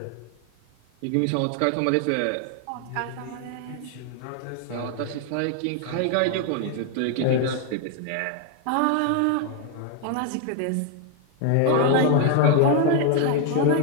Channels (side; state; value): both; different; correlation 0.00